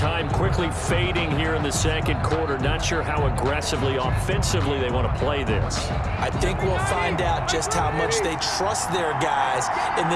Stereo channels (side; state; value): both; identical; correlation 1.00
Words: quickly fading here in the second quarter, not sure how aggressively, offensively they want to play this. I think we'll find out just how much they trust their guys in